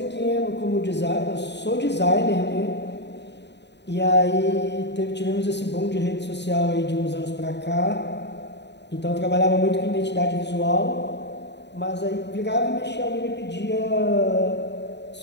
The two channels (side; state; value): right; late; 0.50 ms